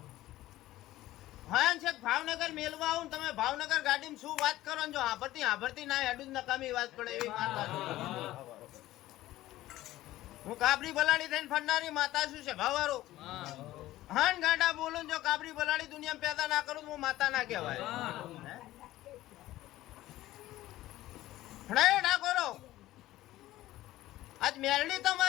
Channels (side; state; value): right; quieter; 15.8 dB